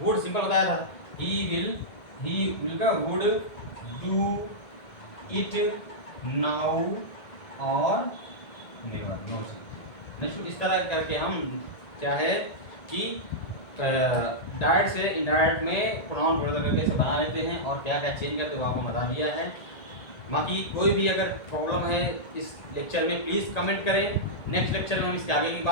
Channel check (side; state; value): right; late; 1.8 ms